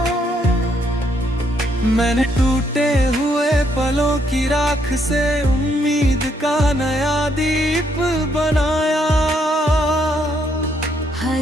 मैंने टूटे हुए पलों की राख से उम्मीद का नया दीप बनाया।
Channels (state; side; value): normal; both; correlation 0.73